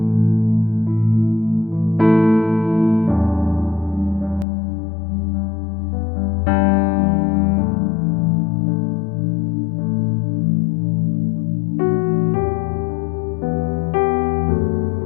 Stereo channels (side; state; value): right; drops out; at 4.5 s